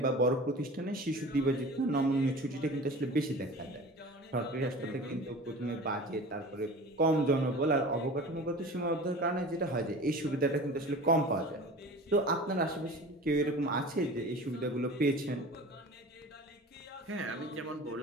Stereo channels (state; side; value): normal; both; correlation 0.38